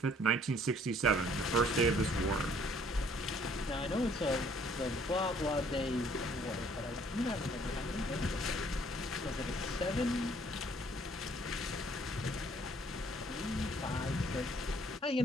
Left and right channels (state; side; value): normal; both; correlation 0.60